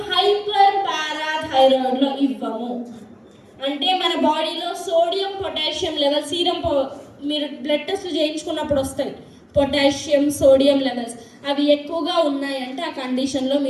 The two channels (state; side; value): identical; both; correlation 1.00